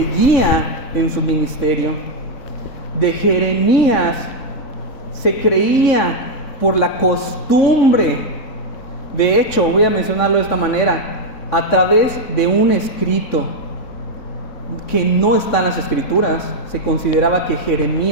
en su ministerio. De Jeremías se creía por la costumbre. De hecho, voy a mencionarlo de esta manera: a través de un escrito que no está en las Escrituras, se consideraba que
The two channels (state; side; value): late; right; 3.6 ms